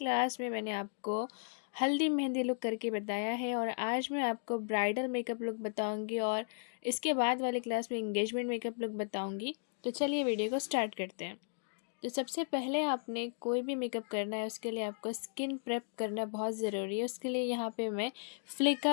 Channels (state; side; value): silent; right; digital silence